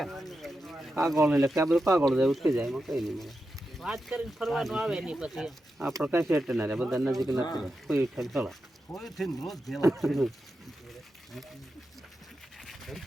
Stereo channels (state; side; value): normal; both; correlation 0.89